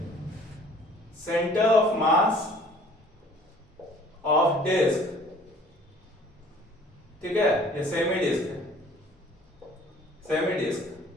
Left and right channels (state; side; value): normal; both; correlation 0.53